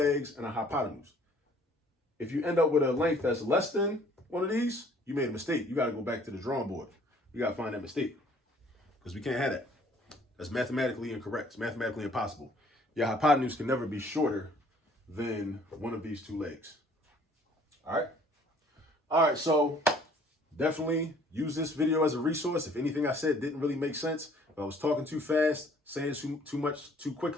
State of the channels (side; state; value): both; normal; correlation 0.57